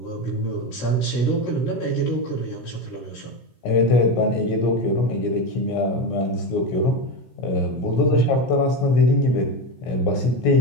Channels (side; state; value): right; late; 17 ms